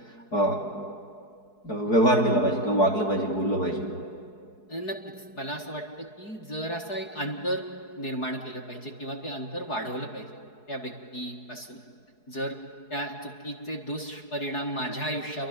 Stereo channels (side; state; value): right; late; 4.7 ms